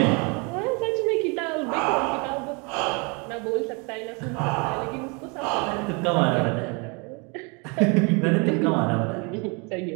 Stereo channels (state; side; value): quieter; left; 31.7 dB